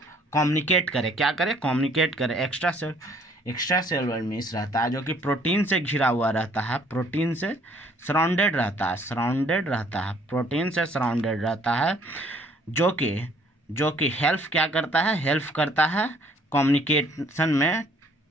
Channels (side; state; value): both; normal; correlation 0.61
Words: कम्युनिकेट करे। क्या करे? कम्युनिकेट करे। एक्स्ट्रा सेलुलर मीन्स रहता है जो कि प्रोटीन से घिरा हुआ रहता है, प्रोटीन से सराउंडेड रहता है, प्रोटीन से सराउंडेड रहता है, जो कि हेल्प क्या करता है? हेल्प करता है कम्युनिकेशन में,